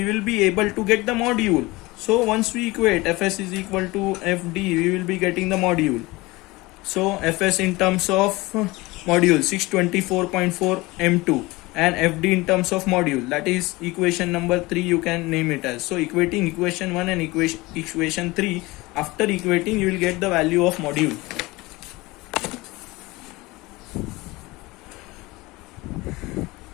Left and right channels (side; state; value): right; quieter; 21.8 dB